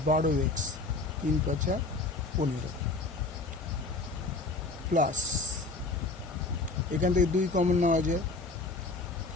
12x, 3 5 15 প্লাস এখান থেকে 2 কমন নেওয়া যায়,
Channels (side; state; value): right; quieter; 3.4 dB